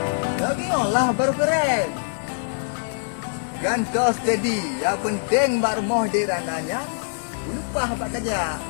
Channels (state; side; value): silent; right; 63 dB below the other